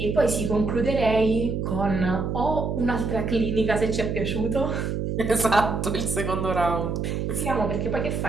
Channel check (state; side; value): noise; right; hum, 2 dB below the sound